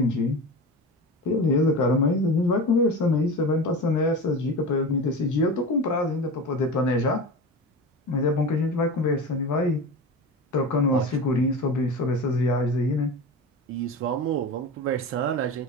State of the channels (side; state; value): both; normal; correlation 0.29